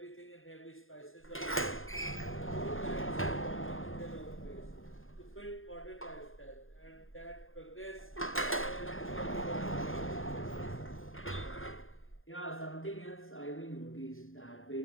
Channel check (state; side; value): late; right; 0.59 ms